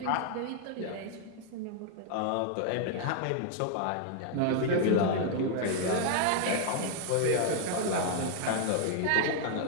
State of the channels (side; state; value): both; different; correlation 0.00